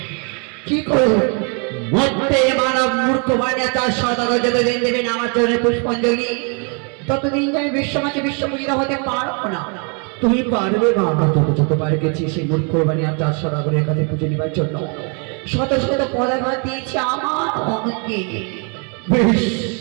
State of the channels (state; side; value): quieter; left; 36.8 dB